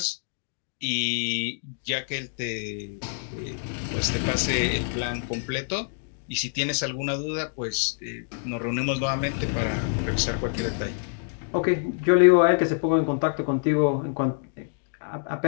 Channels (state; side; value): silent; right; digital silence